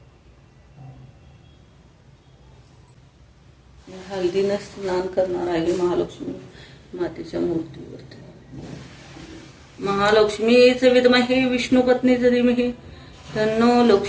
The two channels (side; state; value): both; identical; correlation 1.00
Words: हळदीने स्नान करणार आहे महालक्ष्मी मातेच्या मूर्तीवरती। महालक्ष्मीच विद्महे विष्णुपत्नीच धीमहि तन्नो